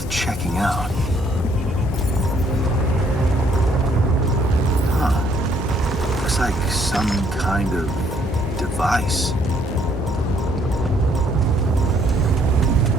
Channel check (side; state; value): both; normal; correlation 0.66